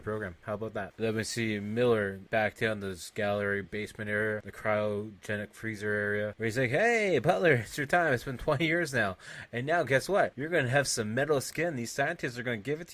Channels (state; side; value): identical; both; correlation 1.00